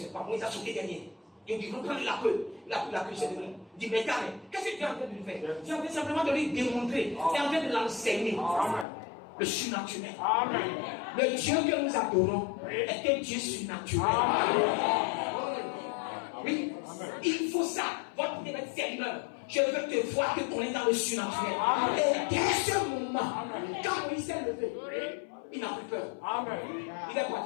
Moïse a sauté derrière. Il dit, reprends la queue. Il a pris la queue, c'est devenu. Il dit, mais carré, qu'est-ce que tu es en train de lui faire? Tu es en train simplement de lui démontrer. Tu es en train de l'enseigner. le surnaturel. Amen. Le Dieu que nous adorons est un Dieu surnaturel. Oui, il faut ça. Votre Seigneur, je veux te voir te connaître dans le surnaturel. Et dès ce moment, quand Moïse s'est levé, il n'a plus peur. Amen. Il est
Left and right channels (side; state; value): right; drops out; at 8.8 s